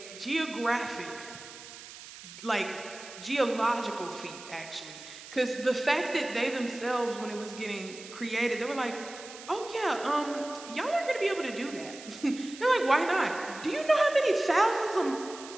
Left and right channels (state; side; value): noise; right; hiss, 15 dB below the sound